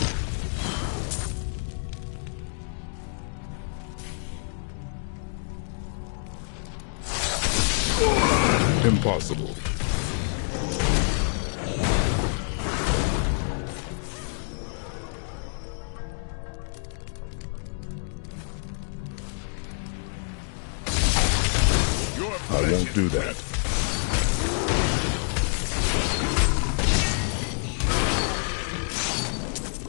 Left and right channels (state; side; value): silent; right; digital silence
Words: Impossible. I won't do that.